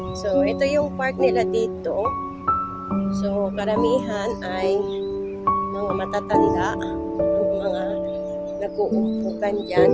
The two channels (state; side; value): identical; both; correlation 1.00